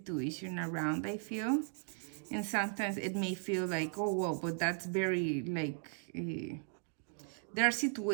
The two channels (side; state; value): left; silent; 53 dB below the other